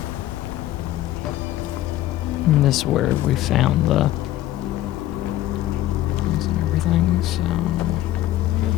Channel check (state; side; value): quieter; right; 14.2 dB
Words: And this is where we found the... and everything, so...